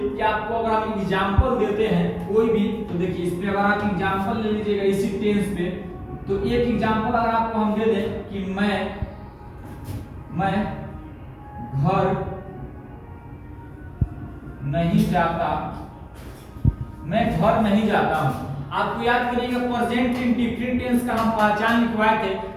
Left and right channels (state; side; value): identical; both; correlation 1.00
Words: कि आपको अगर हम एग्जांपल देते हैं कोई भी, तो देखिए इसमें अगर आप एग्जांपल ले लीजिएगा इसी टेंस पे, तो एक एग्जांपल अगर आपको हम दे दें कि मैं घर नहीं जाता, मैं घर नहीं जाता हूं। आपको याद करिएगा प्रेजेंट इंडेफिनिट टेंस का हम पहचान लिखवाए थे